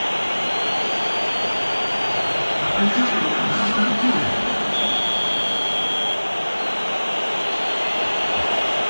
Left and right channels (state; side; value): inverted; both; correlation -1.00